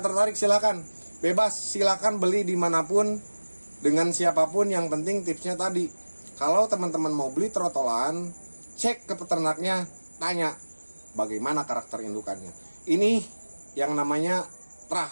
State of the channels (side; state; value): both; inverted; correlation -1.00